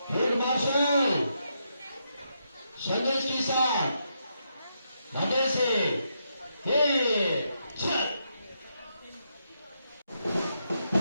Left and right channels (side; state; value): both; inverted; correlation -0.81